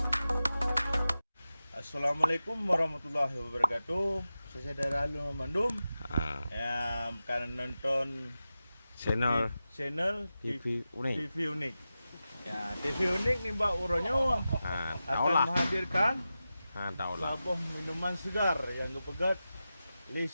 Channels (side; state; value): both; inverted; correlation -0.93